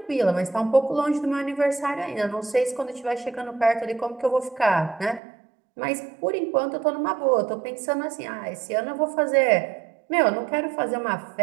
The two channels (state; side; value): drops out; left; at 5.2 s